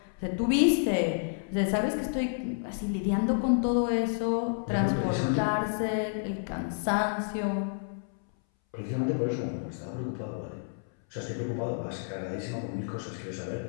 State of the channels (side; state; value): right; silent; 58 dB below the other